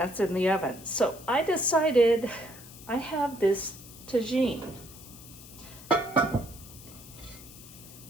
in the oven. So I decided I have this tagine,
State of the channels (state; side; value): noise; left; hiss, 18 dB below the sound